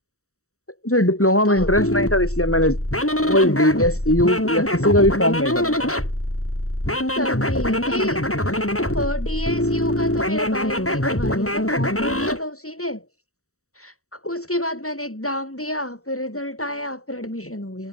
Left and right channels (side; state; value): right; late; 0.64 ms